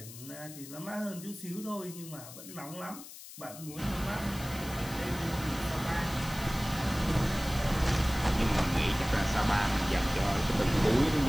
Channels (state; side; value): noise; left; hiss, 15 dB below the sound